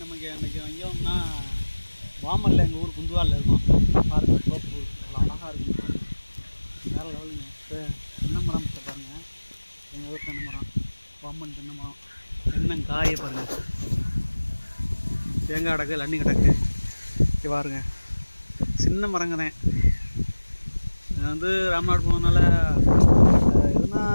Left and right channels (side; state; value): both; inverted; correlation -1.00